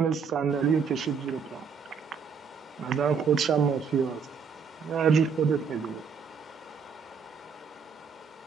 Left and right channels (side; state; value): left; quieter; 6.1 dB